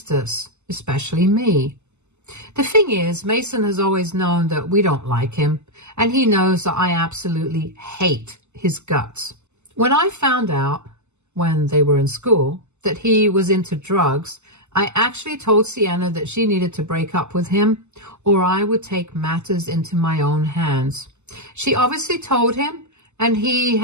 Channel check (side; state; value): left; late; 0.83 ms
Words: us, especially me. The thing is, Mason has always known that we don't like him, and he knows that I absolutely hate his guts. When I found out, when they were in school, that he was into drugs, I actually told Sienna that she needed to break up with him, or I would take matters into my own hands. She obviously told him, and he